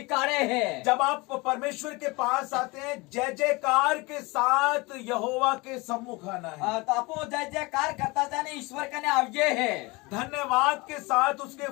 है। जब आप परमेश्वर के पास आते हैं जय जयकार के साथ यहोवा के सम्मुख आना है। तो अपो जय जयकार करता जाने ईश्वर कने आवजे है। धन्यवाद के साथ उसके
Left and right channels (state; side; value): quieter; right; 24.7 dB